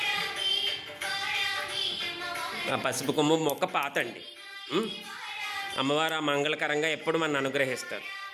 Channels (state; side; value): identical; both; correlation 1.00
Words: ఆ పసుపు కొమ్ము మొక్క పాతండి. అమ్మవారు ఆ మంగళకరంగా ఎప్పుడు మన అనుగ్రహిస్తారు.